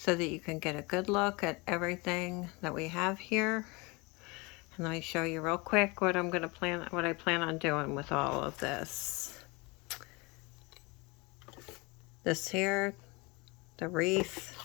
that you can get a good look at everything that we have here. And let me show you real quick what I plan on doing with all of this. This here, the wreath,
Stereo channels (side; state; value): right; quieter; 26.7 dB